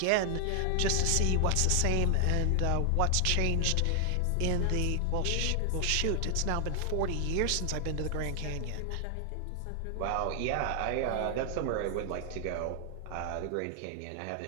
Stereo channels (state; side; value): different; both; correlation 0.00